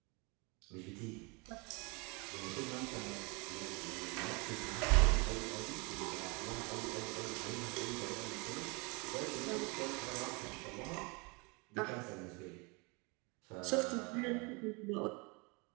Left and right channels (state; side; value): quieter; left; 29.6 dB